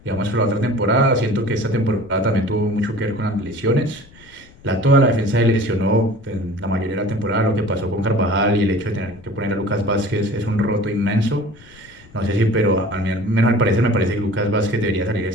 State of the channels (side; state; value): left; noise; rumble, 24 dB below the sound